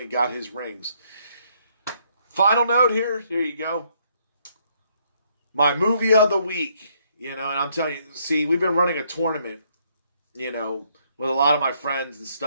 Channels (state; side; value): inverted; both; correlation -0.70